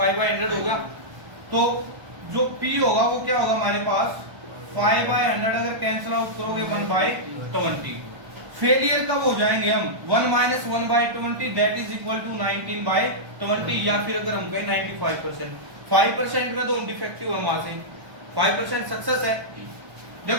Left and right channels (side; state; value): left; late; 1.3 ms